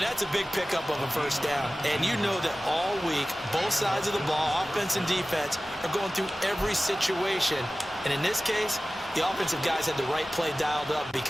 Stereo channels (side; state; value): both; normal; correlation 0.96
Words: that's a big pickup of a first down. And you know that all week, both sides of the ball, offense and defense, are going through every situation. And in this case, the offensive guys had the right play dialed up,